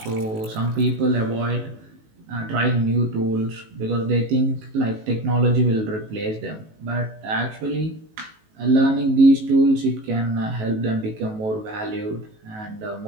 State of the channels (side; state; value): left; late; 19 ms